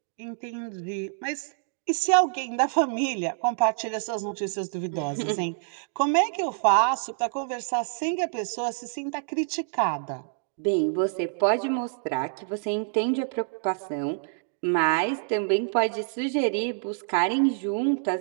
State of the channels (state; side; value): silent; left; digital silence